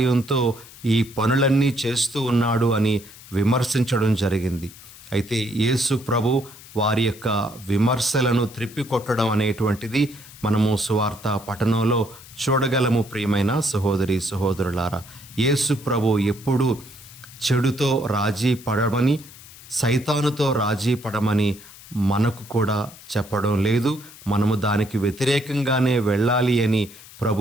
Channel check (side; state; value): left; noise; hiss, 19 dB below the sound